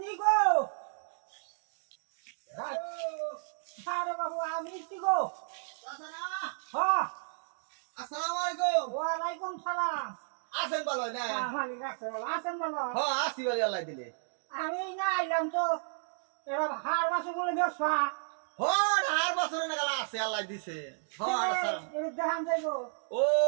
আমি গো আরে বাবু আমি গো হ্যাঁ আসসালামু আলাইকুম। ওয়ালাইকুম সালাম আছেন ভালো না? মালিক আছে বলো আছেন বলো হ্যাঁ আসি বলি আল্লাহ দিলে। আমি না আইলাম তো এরা হার মাসে বলে ব্যবসা হ্যাঁ আর বছরে না গেলা আছে আল্লাহ দিছে। হ্যাঁ আসসালাম। দেখান যাইবো ও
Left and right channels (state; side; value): silent; left; digital silence